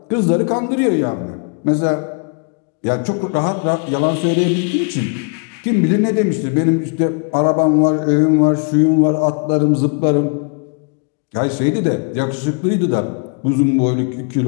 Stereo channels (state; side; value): quieter; right; 38.3 dB